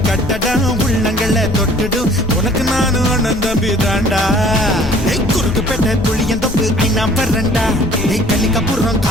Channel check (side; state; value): left; noise; rumble, 9 dB below the sound